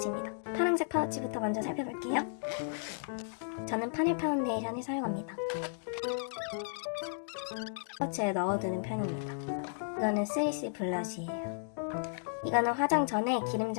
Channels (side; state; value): right; silent; digital silence